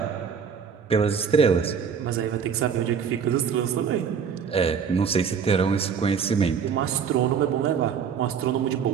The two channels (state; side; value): quieter; left; 6.8 dB